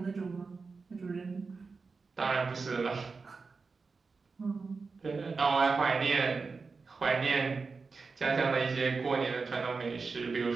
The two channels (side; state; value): left; quieter; 4.5 dB